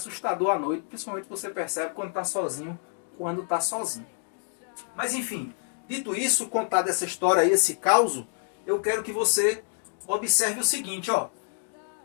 à noite, principalmente você percebe quando está sozinho, Mas enfim, dito isso, contado essa história aí, esse caos, eu quero que você observe o seguinte, ó.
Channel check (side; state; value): right; silent; 60 dB below the other